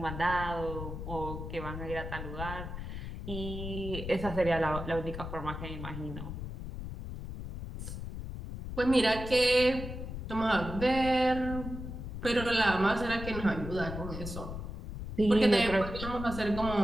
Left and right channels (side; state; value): left; noise; rumble, 7 dB below the sound